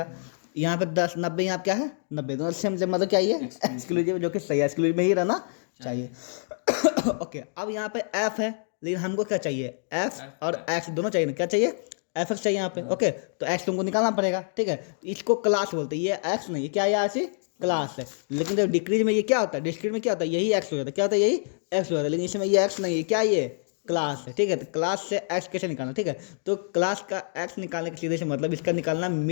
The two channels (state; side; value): silent; right; digital silence